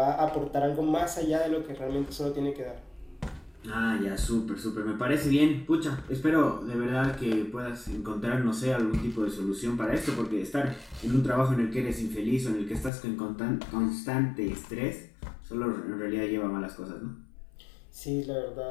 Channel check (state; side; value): drops out; right; at 12.9 s